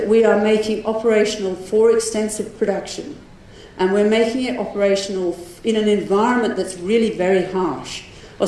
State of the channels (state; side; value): identical; both; correlation 1.00